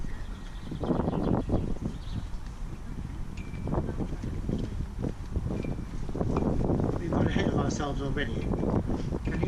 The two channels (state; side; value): identical; both; correlation 1.00